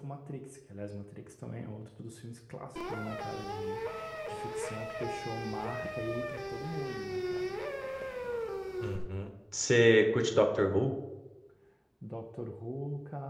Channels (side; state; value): both; identical; correlation 1.00